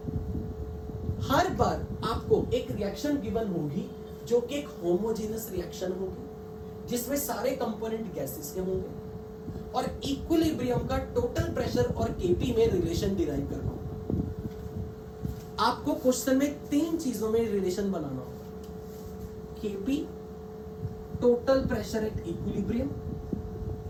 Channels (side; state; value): both; identical; correlation 1.00